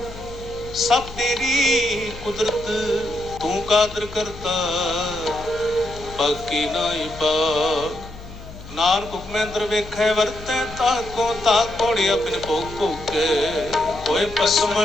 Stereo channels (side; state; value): left; noise; hum, 15 dB below the sound